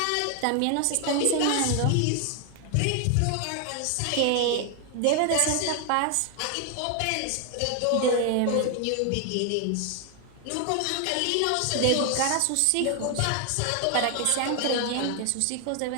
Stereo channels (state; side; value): different; both; correlation 0.00